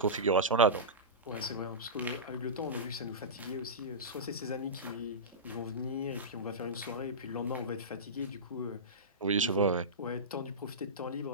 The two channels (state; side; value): normal; both; correlation -0.17